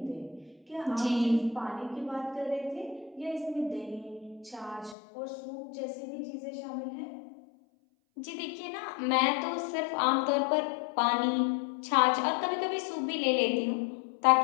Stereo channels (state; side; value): drops out; right; at 5.0 s